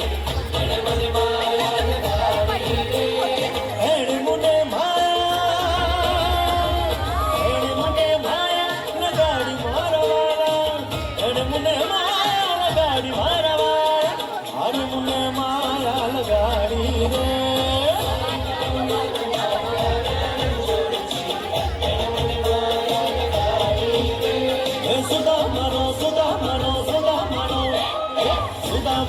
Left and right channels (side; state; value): both; identical; correlation 1.00